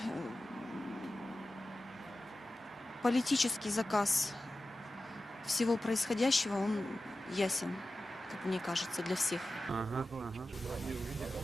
политический заказ всего происходящего, он ясен, как мне кажется, для всех. Ага.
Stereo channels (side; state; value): both; normal; correlation 0.94